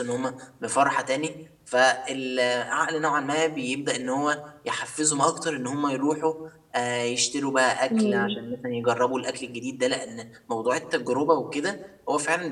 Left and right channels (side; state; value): both; identical; correlation 1.00